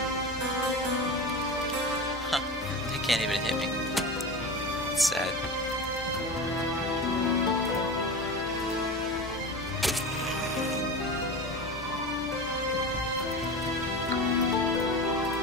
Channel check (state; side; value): normal; both; correlation 0.28